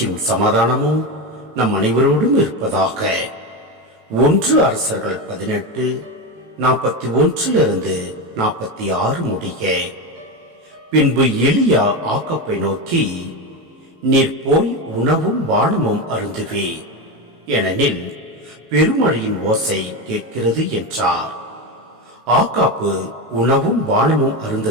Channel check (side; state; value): left; late; 18 ms